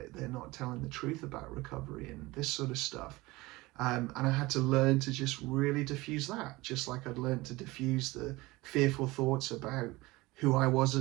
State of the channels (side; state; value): left; quieter; 21.1 dB